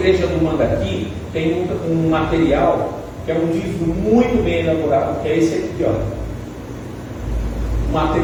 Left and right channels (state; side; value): identical; both; correlation 1.00